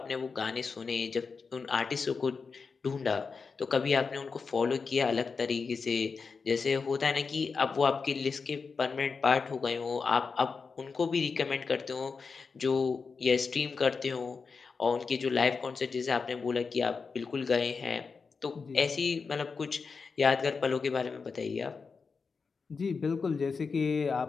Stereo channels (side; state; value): right; quieter; 5.0 dB